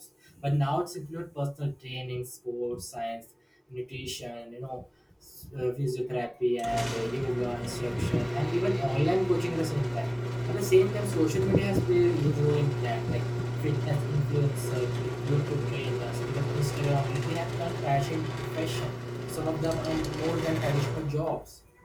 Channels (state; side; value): identical; both; correlation 1.00